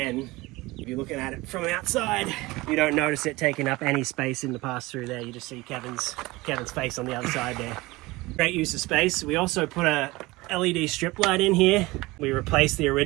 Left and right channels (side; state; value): left; quieter; 21.2 dB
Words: if you're looking at it from outside, you don't notice it taking up any space in the pass-through there. You just see Kevin's face on the other side there. Great use of space. We also put a LED strip light in here. We replaced the